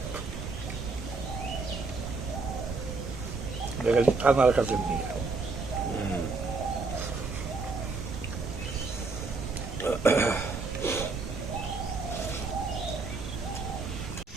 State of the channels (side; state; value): left; quieter; 4.0 dB